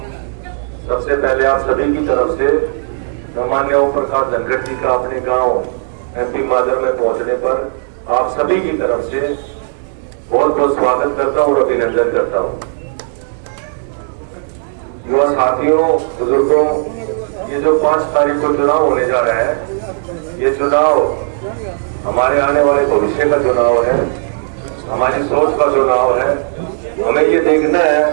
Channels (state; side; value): silent; left; digital silence